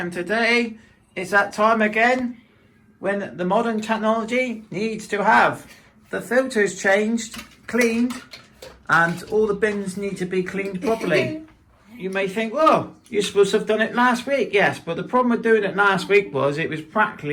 today is that time again when the modern technology needs to have the filters changed, cleaned, and all the bins need to be cleaned properly. You may think, well, you're supposed to have done it last week. Yes, but the problem with doing it last week was it was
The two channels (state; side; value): identical; both; correlation 1.00